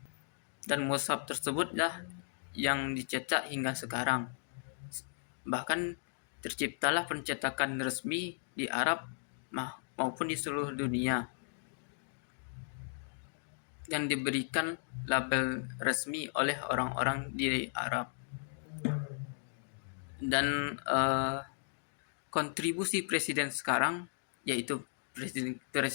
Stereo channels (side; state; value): right; silent; digital silence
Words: dan mushaf tersebutlah yang dicetak hingga sekarang. Bahkan terciptalah pencetakan resmi di Arab maupun di seluruh dunia, yang diberikan label resmi oleh orang-orang di Arab. Dan kontribusi presiden sekarang, yaitu